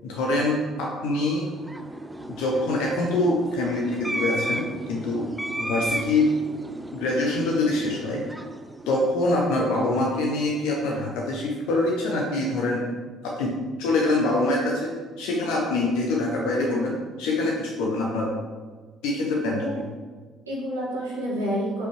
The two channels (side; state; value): both; normal; correlation 0.54